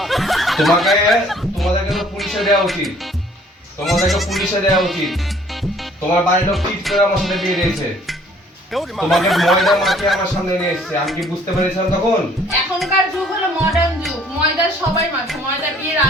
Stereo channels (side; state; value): both; normal; correlation 0.58